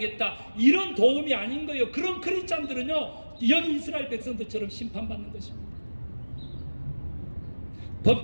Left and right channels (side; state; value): both; inverted; correlation -1.00